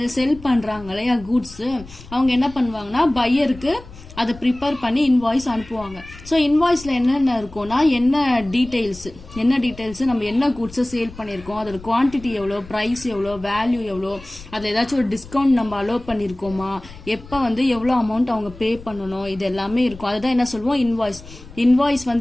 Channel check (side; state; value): left; noise; rumble, 18 dB below the sound